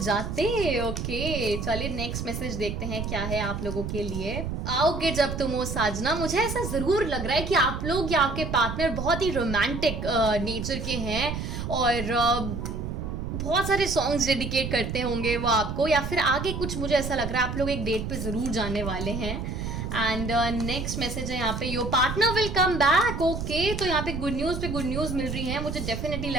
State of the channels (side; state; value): right; noise; rumble, 4 dB below the sound